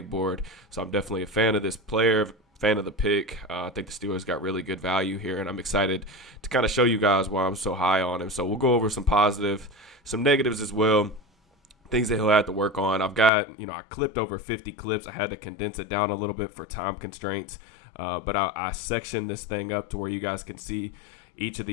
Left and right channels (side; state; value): right; drops out; at 13.3 s